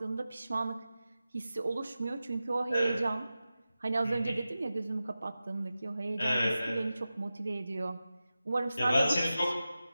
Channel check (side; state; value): both; inverted; correlation -0.94